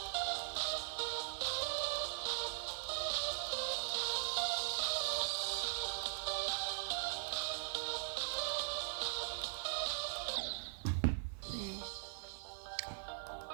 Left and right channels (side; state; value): left; silent; 51 dB below the other